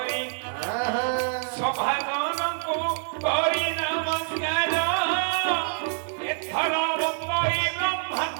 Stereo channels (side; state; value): left; silent; digital silence